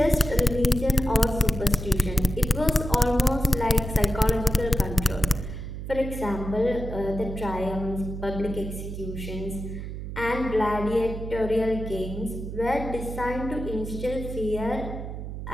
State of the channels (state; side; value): noise; right; hum, 7 dB below the sound